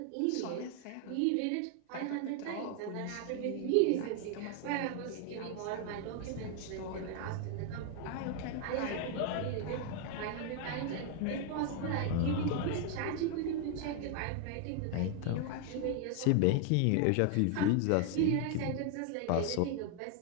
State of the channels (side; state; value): both; different; correlation 0.00